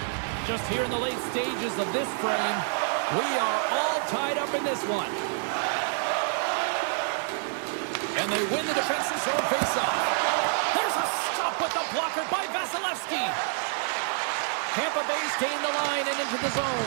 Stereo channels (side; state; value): left; silent; 60 dB below the other